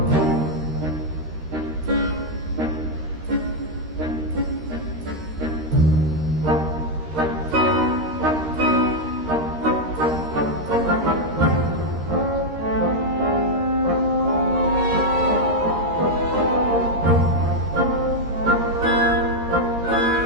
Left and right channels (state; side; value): late; left; 13 ms